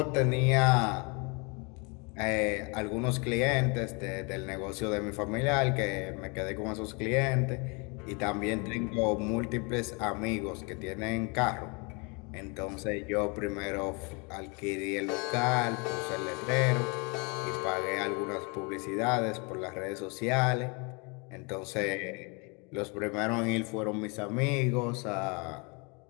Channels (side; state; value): right; quieter; 31.6 dB